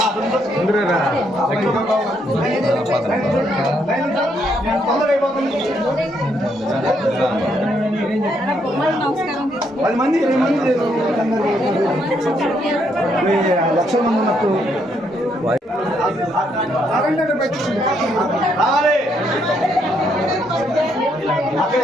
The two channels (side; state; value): both; normal; correlation 0.74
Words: పది మంది 20 మంది లక్షల మంది ఉన్నట్టు రావాలి అక్కడ